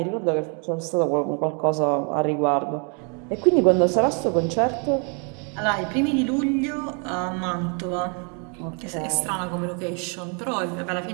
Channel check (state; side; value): quieter; left; 37.1 dB